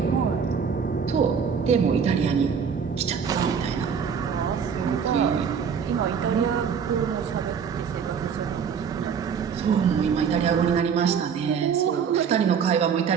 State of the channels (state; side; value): quieter; left; 6.8 dB